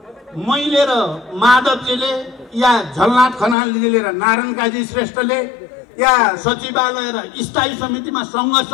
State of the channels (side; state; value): right; drops out; at 3.6 s